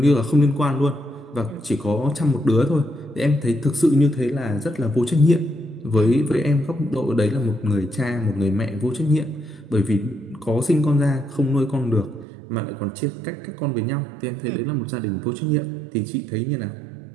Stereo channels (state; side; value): drops out; left; at 12.2 s